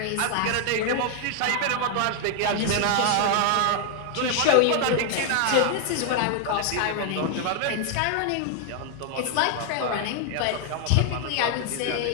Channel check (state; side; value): different; both; correlation 0.00